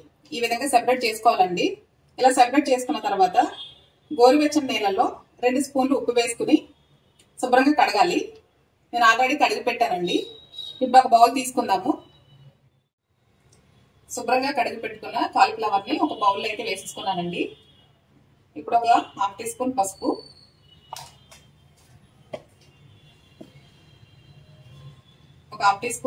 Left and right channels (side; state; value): both; identical; correlation 1.00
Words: ఈ విధంగా సెపరేట్ చేసుకోవాలండి. ఇలా సెపరేట్ చేసుకున్న తర్వాత గోరువెచ్చని నీళ్ళలో 2 స్పూన్లు ఉప్పు వేసుకుని శుభ్రంగా కడగాలి. నేను ఆల్రెడీ కడిగి పెట్టానండి. ఇప్పుడు ఒక బౌల్ తీసుకుందాము. శుభ్రంగా కడిగి పెట్టుకున్న కాలీఫ్లవర్ని ఒక బౌల్లో అయితే వేసేసుకున్నానండి. ఇప్పుడు ఒక 1/2 టీ స్పూన్ పసుపు, ఒక 1/2 టీ